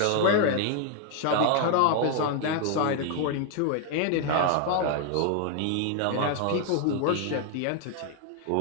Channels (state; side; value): different; both; correlation 0.00